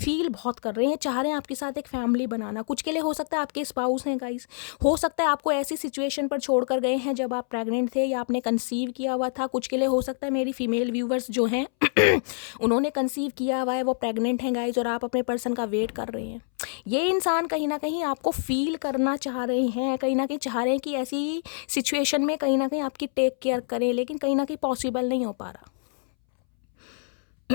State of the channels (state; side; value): silent; right; 61 dB below the other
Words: बहुत कर रहे हैं, चाह रहे हैं आपके साथ एक फैमिली बनाना। कुछ के लिए हो सकता है आपके स्पाउस हैं गाइस, हो सकता है आपको ऐसी सिचुएशन पर छोड़ कर गए हैं जब आप प्रेग्नेंट थे या आपने कंसीव किया हुआ था। कुछ के लिए हो सकता है मेरी फीमेल व्यूवर्स जो हैं उन्होंने कंसीव किया हुआ है, वो प्रेग्नेंट हैं गाइस, और आप अपने पर्सन का वेट कर रहे हैं। ये इंसान कहीं ना कहीं आपको फील करना चाह रहे हैं, कहीं ना कहीं चाह रहे हैं कि ऐसी सिचुएशन में कहीं ना कहीं आपकी टेक केयर करें, लेकिन कहीं ना कहीं पॉसिबल नहीं हो पा रहा।